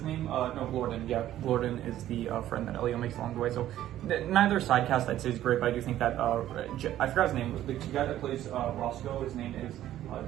name? No, Glorden. Yeah, Glorden is the friend that Elio makes along the way. So neither side cast, I'd say, is great, but I do think that I forgot his name. The guy that plays Roscoe, his name is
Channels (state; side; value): quieter; left; 12.8 dB